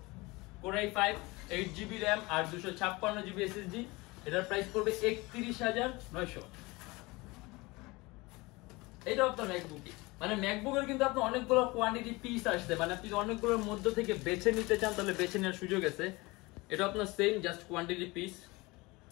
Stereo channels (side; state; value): right; quieter; 23.3 dB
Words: Core i5 8GB RAM আর 256GB SSD, এটার প্রাইস পড়বে 31,900। এটা আপনার ম্যাকবুকই, মানে ম্যাকবুকের কিন্তু আপনার অনেকগুলো কোয়ান্টিটি পিস আসছে, মানে আপনি অনেকগুলোর মধ্যে থেকে বেছে নিতে চান তাহলে বেছে নেওয়ার সুযোগ আছে। এটা আপনার same just quantity piece